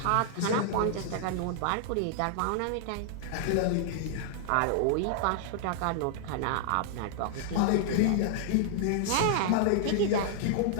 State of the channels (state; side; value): different; both; correlation -0.01